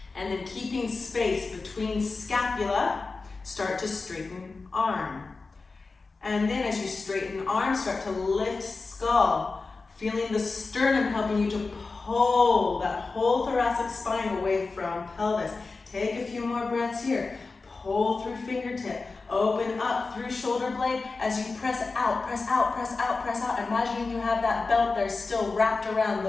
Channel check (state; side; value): quieter; right; 4.0 dB